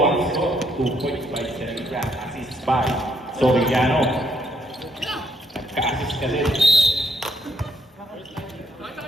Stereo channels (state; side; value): normal; both; correlation 0.71